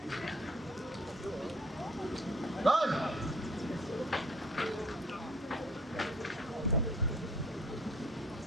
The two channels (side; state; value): both; normal; correlation 0.55